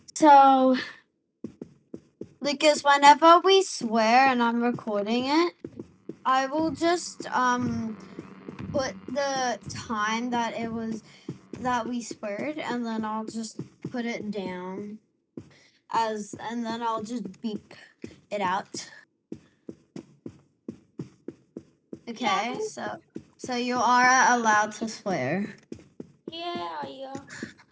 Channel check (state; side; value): identical; both; correlation 1.00